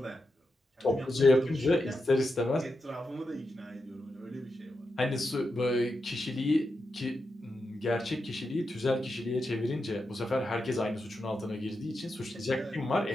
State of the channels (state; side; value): normal; both; correlation 0.87